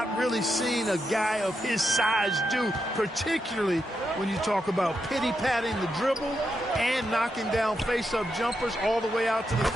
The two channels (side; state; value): both; normal; correlation 0.84